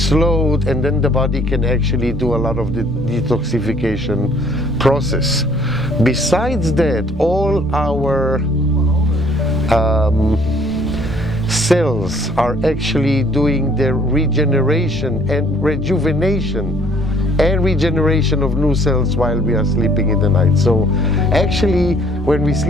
and then the body can actually do a lot of the detoxification process. Besides that, all our cells are actually doing their regeneration and rejuvenation and regeneration of new cells while we are sleeping in the night. So actually when we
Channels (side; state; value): left; noise; rumble, 18 dB below the sound